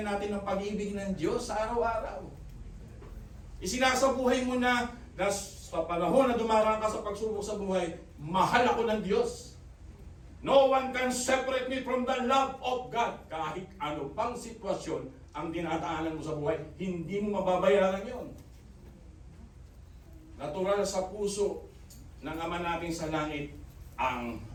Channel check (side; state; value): both; identical; correlation 1.00